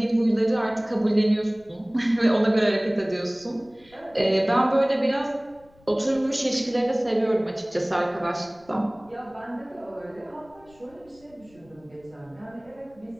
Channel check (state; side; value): noise; left; rumble, 29 dB below the sound